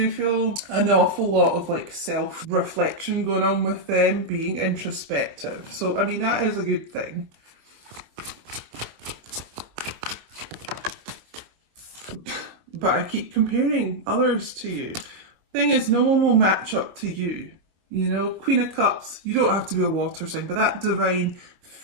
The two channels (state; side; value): late; left; 25 ms